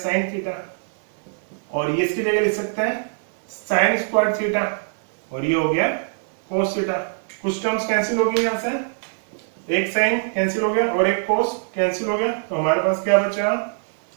थीटा, और ये इसकी जगह लिख सकते हैं साइन स्क्वायर थीटा, और ये हो गया कोस थीटा। कुछ टर्म्स कैंसिल हो गई, यहां से एक साइन कैंसिल हो गया और एक कोस कैंसिल हो गया, तो हमारे पास क्या बचा,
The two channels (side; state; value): left; silent; digital silence